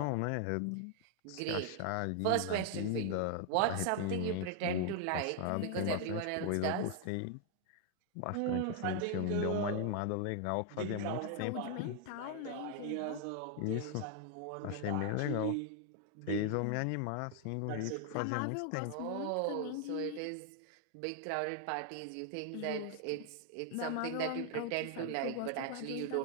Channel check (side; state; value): both; different; correlation 0.00